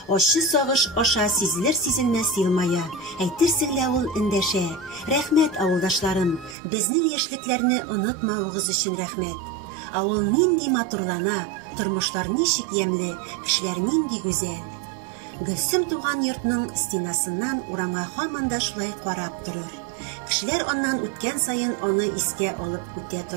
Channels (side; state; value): left; drops out; at 6.6 s